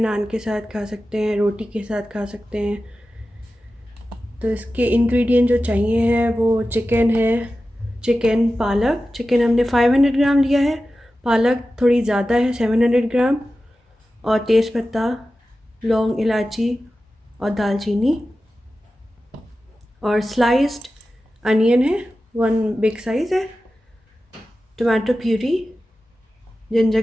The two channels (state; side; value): normal; both; correlation 0.94